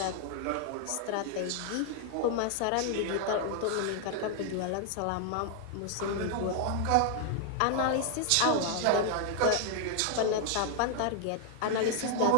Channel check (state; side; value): different; both; correlation 0.00